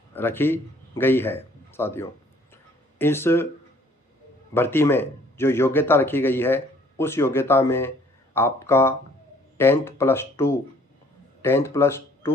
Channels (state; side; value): normal; both; correlation 0.59